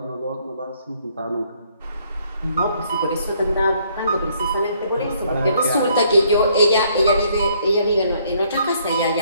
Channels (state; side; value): inverted; both; correlation -0.67